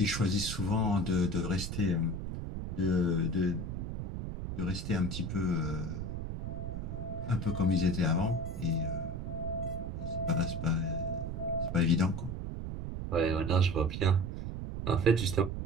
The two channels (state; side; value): noise; right; rumble, 5 dB below the sound